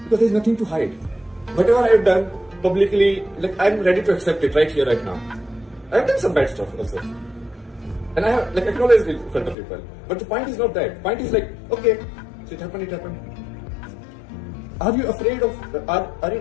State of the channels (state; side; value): drops out; right; at 9.6 s